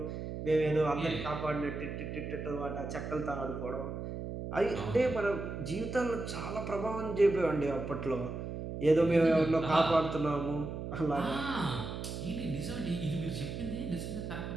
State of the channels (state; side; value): noise; right; hum, 6 dB below the sound